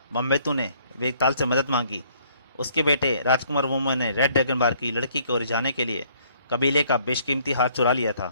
बम्बेतु ने वेताल से मदद मांगी। उसके बेटे राजकुमार वोमो ने रेड ड्रैगन बार की लड़की को रिझाने के लिए कबीले का बेशकीमती हार चुरा लिया था,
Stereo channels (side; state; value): both; inverted; correlation -0.63